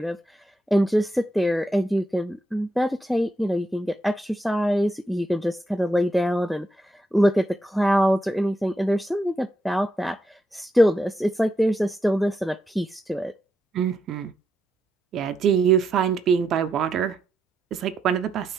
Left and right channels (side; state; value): both; normal; correlation 0.83